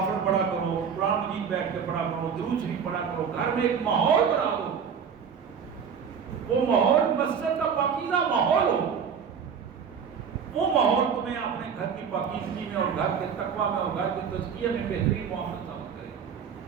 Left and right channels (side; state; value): left; quieter; 6.9 dB